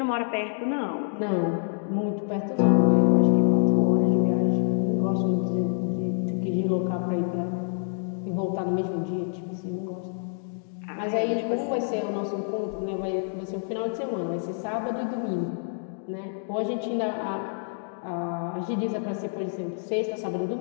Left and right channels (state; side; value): silent; right; digital silence